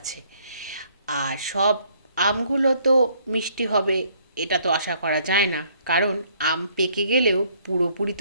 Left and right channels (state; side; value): inverted; both; correlation -0.64